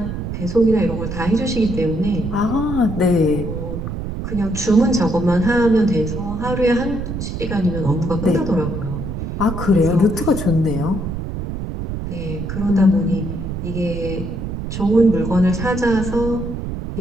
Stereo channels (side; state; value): right; noise; rumble, 5 dB below the sound